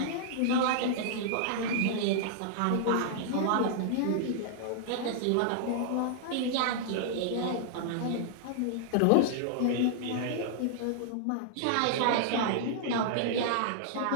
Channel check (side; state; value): both; different; correlation -0.01